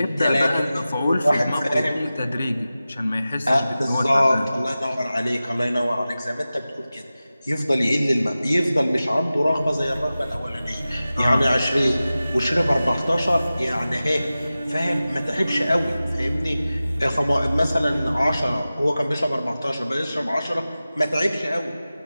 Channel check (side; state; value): both; inverted; correlation -0.95